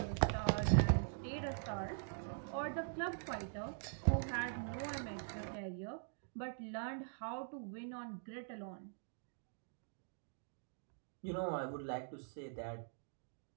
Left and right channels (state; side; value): silent; left; digital silence